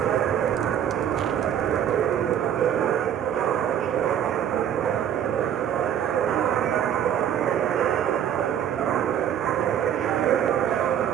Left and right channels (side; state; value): left; quieter; 9.7 dB